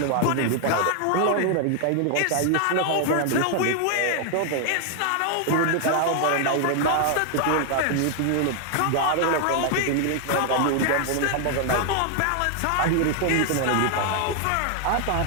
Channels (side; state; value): both; different; correlation 0.00